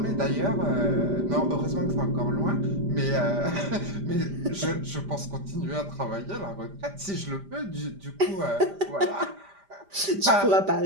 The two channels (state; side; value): late; left; 5.0 ms